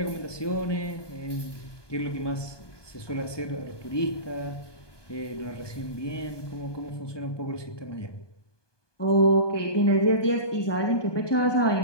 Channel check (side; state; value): right; late; 1.2 ms